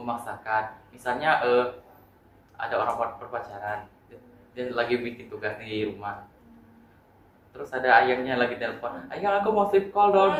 Misalnya ada orang berpacaran, dia lagi bikin tugas di rumah. Terus ada ayahnya lagi telepon, ayah aku mau sleep call dong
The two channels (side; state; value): both; identical; correlation 1.00